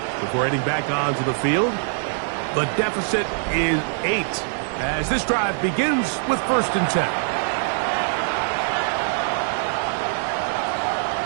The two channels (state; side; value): silent; left; 63 dB below the other